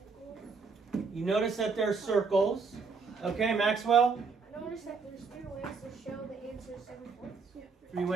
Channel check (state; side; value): quieter; left; 4.8 dB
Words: You notice that there's circles. Okay, Maxwell? I noticed that there's 3 ways to show the answer 7/4. 3